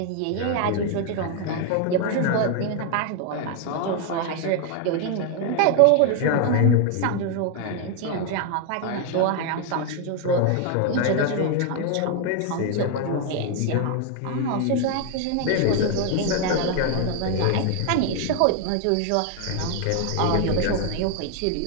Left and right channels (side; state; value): both; different; correlation 0.00